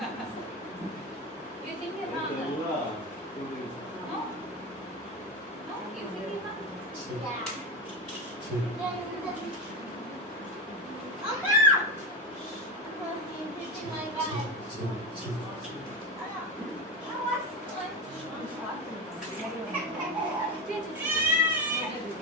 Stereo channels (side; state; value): both; normal; correlation 0.17